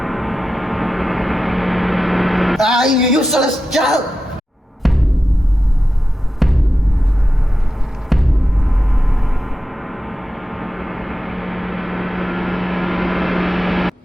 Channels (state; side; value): normal; both; correlation 0.92